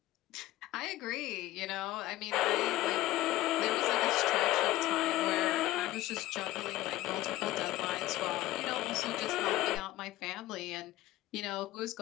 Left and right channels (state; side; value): quieter; right; 16.1 dB